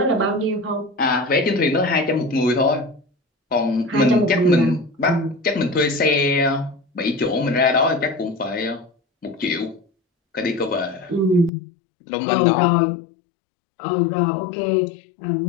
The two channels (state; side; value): drops out; right; at 11.5 s